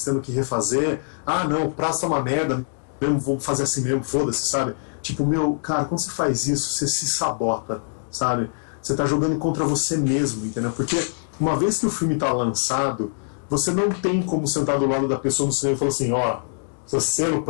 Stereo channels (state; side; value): silent; right; digital silence